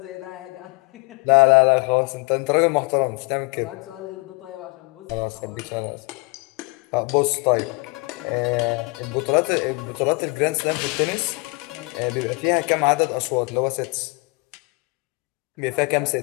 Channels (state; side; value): quieter; right; 28.5 dB